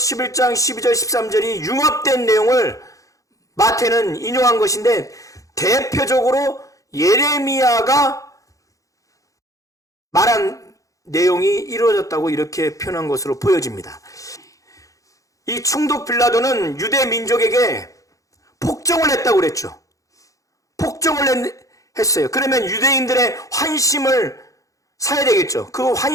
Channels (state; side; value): late; right; 0.16 ms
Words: 12절 13절이 융합된 내용을 마태는 인용한 것인데 대표적으로 예레미야가 말한 내용이 이루어졌다고 이렇게 표현한 것으로 보여집니다. 이 총독 빌라도는 유대 민족에게 폭정을 했다고 그랬죠. 폭정을 했어요. 그러면 유대인들의 환심을 사야 되겠죠. 그